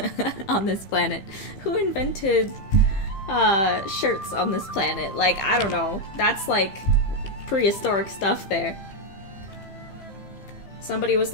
on this planet? Who invented shirts on this planet? Like, I don't know. That's like prehistoric stuff there. Somebody was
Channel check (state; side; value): late; right; 15 ms